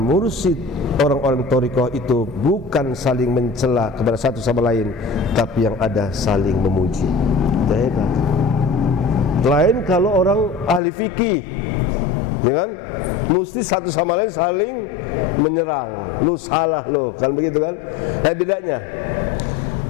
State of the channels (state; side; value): drops out; right; at 10.8 s